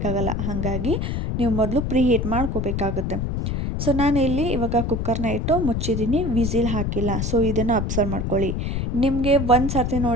ಹಾಗಾಗಿ ನೀವು ಮೊದಲು ಪ್ರೀಹೀಟ್ ಮಾಡ್ಕೋಬೇಕಾಗುತ್ತೆ. ಸೊ ನಾನು ಇಲ್ಲಿ ಇವಾಗ ಕುಕ್ಕರ್ನ ಇಟ್ಟು ಮುಚ್ಚಿದ್ದೀನಿ, ವಿಸಿಲ್ ಹಾಕಿಲ್ಲ. ಸೊ ಇದನ್ನು ಅಬ್ಸರ್ವ್ ಮಾಡ್ಕೊಳ್ಳಿ. ನಿಮಗೆ ಒಂದು ಸರ್ತಿ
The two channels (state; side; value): noise; left; rumble, 1 dB below the sound